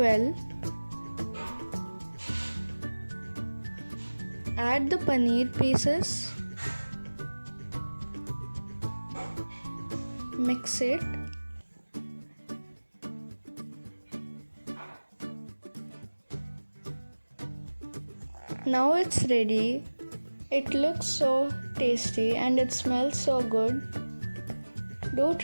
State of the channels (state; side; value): inverted; both; correlation -1.00